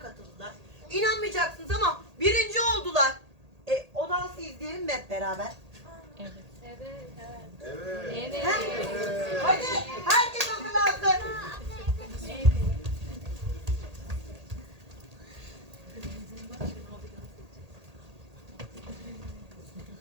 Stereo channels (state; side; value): late; left; 1.8 ms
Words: katıldılar. İnanmayacaksınız ama birinci oldular. O dansı izleyelim mi hep beraber? Evet. Hadi herkes hazırlansın. You